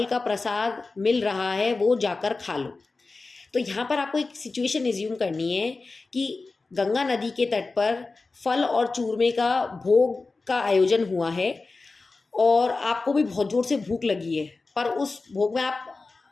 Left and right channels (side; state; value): right; quieter; 3.8 dB